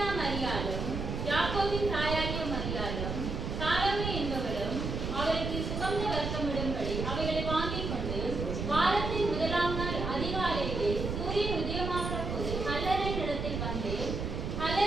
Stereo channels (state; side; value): noise; right; rumble, 3 dB below the sound